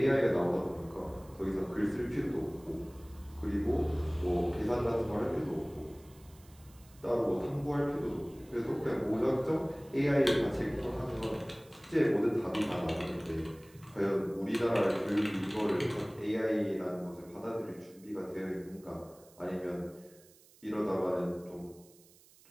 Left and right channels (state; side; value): noise; right; hiss, 26 dB below the sound